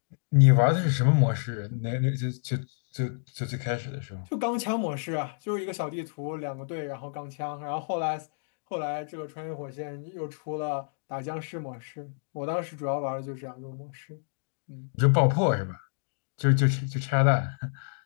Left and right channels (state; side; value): silent; right; digital silence